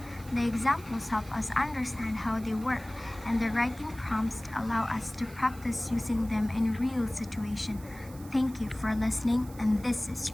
The examples help us understand how they work, and the writing prompts allow us to practice using them in real situations. Thank you for listening, and this is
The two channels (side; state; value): right; noise; hiss, 20 dB below the sound